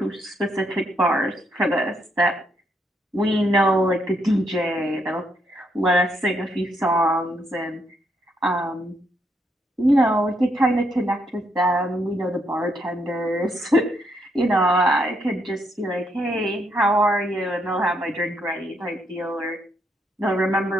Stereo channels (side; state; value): both; normal; correlation 0.76